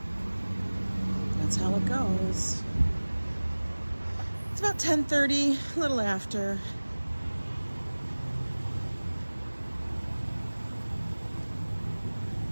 That's how it goes. It's about 10:30, a little after.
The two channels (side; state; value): both; inverted; correlation -1.00